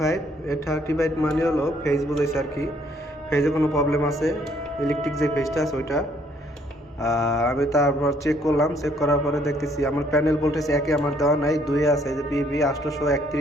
মানে হলো ফেজ বুঝাইছে আর কি, ফেজে কোনো প্রবলেম আছে, ইলেকট্রিক যে ফেজটা আছে ওইটা। আমি তারপর চেক করলাম, চেক করার পরে দেখতেছি আমার প্যানেল ভোল্টেজ একে আমার দেওয়া নাই, দুয়ে আছে এই যে পিভি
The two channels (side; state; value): both; normal; correlation 0.66